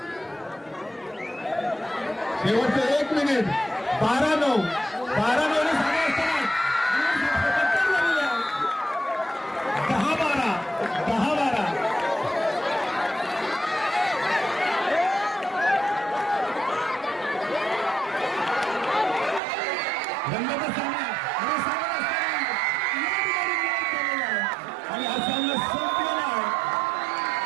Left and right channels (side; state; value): left; drops out; at 19.4 s